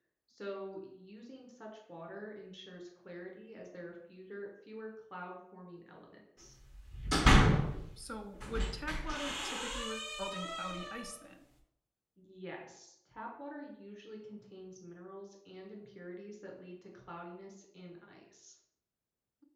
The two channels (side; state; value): both; identical; correlation 1.00